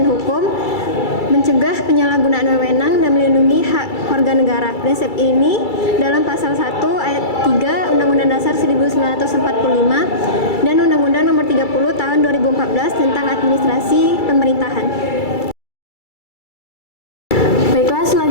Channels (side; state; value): right; late; 2.3 ms